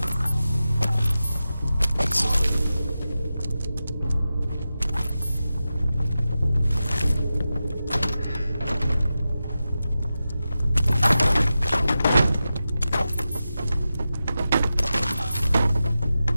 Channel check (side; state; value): both; inverted; correlation -0.92